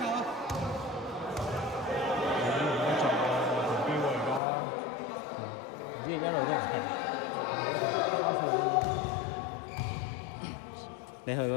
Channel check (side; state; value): right; drops out; at 4.4 s